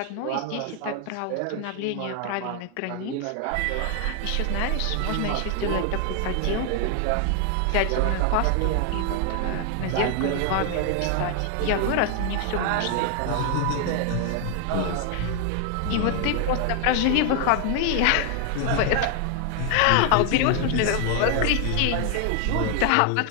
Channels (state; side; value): different; both; correlation 0.00